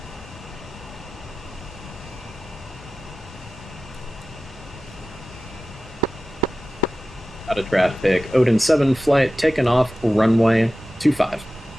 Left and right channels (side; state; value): both; normal; correlation 0.95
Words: Out of traffic, Odin 7 Flight, taking off runway 25.